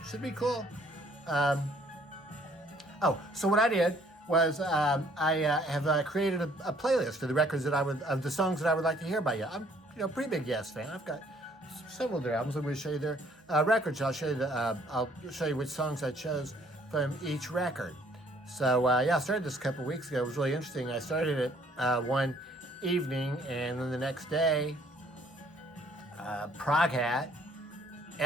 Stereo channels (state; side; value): normal; both; correlation 0.62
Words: should be cool. So what I did was I have created a playlist of the records of the songs that I would like to hear by you. I'm a pretty big Yes fan. I've got several of their albums. I'm going to show you their records. I'll show you which songs I chose from each record. So I started this a couple weeks ago. It was really interesting. I started it one evening, and then the next day, Prog Hat